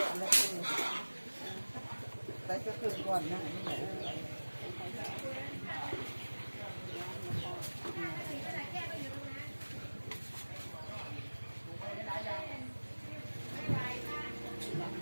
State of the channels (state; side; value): inverted; both; correlation -1.00